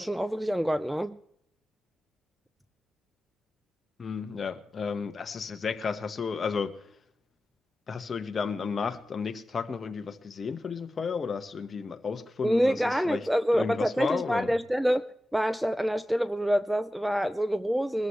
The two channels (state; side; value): normal; both; correlation 0.94